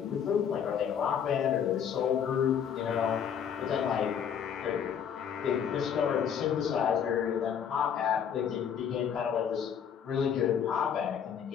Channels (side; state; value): right; quieter; 8.1 dB